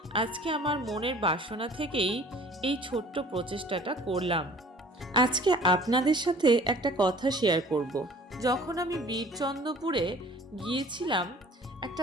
আজকে আমার মনের বাসনা থেকেই এই ছোট্ট প্রচেষ্টাটা করলাম। আজকে আপনাদের সাথে একটা কথা শেয়ার করব। যখন আমি বীরচন্দ্রপুরে গিয়েছিলাম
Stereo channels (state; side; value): normal; both; correlation 0.49